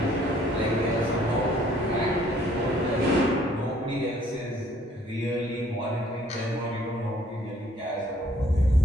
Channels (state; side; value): normal; both; correlation 0.60